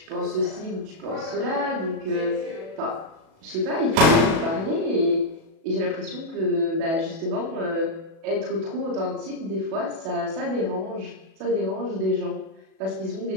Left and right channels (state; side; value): late; left; 37 ms